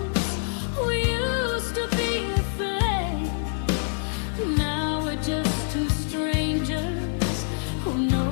we used to be a flame. Now we're just two strangers who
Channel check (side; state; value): right; silent; 61 dB below the other